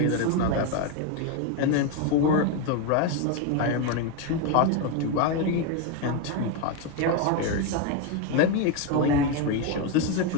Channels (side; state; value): both; different; correlation 0.02